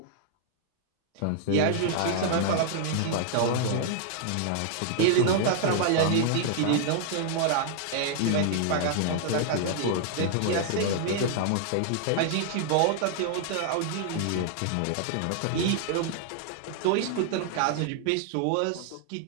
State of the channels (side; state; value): both; different; correlation 0.00